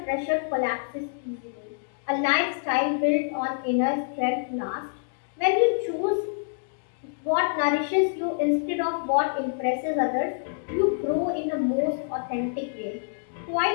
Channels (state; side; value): silent; right; digital silence